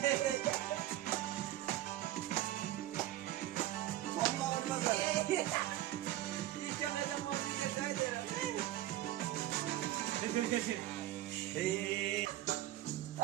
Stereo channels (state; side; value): quieter; left; 14.4 dB